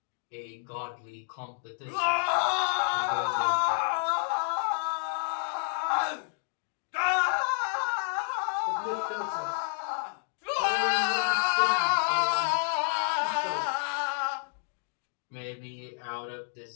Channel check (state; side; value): silent; right; digital silence